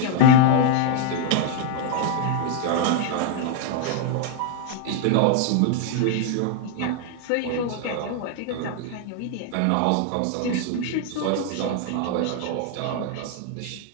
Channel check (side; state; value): both; different; correlation 0.00